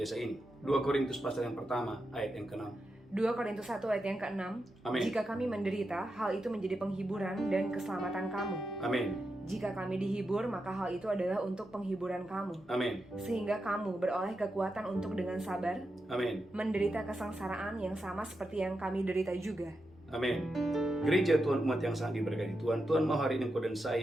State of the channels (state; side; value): normal; both; correlation 0.87